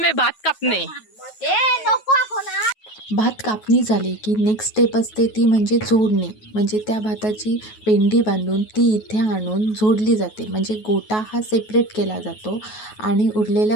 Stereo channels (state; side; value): late; right; 9.3 ms